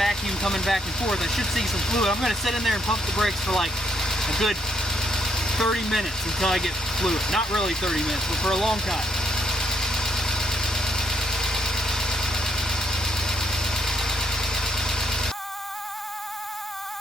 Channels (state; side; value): normal; both; correlation 0.73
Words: coming back and forth. I should see some fluid. I'm going to sit in there and pump the brakes for like a good 30 minutes until I get fluid. Not really 30 minutes, but for a long time.